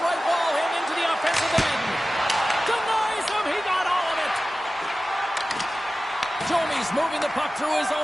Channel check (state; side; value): normal; both; correlation 0.96